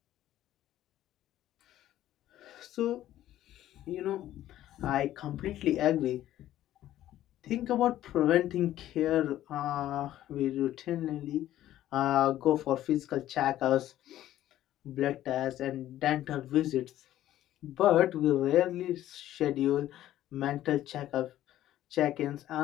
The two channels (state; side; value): quieter; right; 13.2 dB